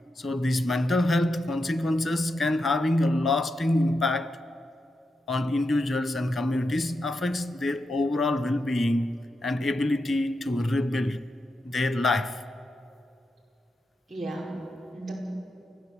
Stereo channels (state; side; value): normal; both; correlation 0.86